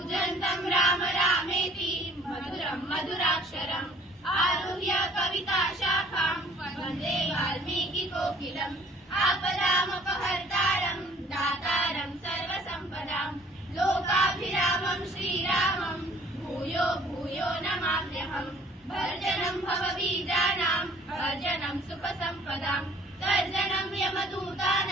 राम रामेति मधुरं मधुराक्षरम् आरुह्य कविताशाखां वन्दे वाल्मीकिकोकिलम् आपदामपहर्तारं दातारं सर्वसम्पदां लोकाभिरामं श्रीरामं भूयो भूयो नमाम्यहम् भर्जनं भवबीजानां भर्जनं सुखसम्पदां तर्जनं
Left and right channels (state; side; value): normal; both; correlation 0.55